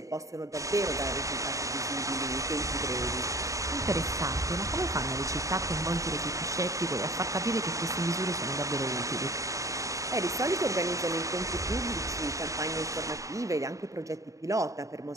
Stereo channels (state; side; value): late; left; 0.16 ms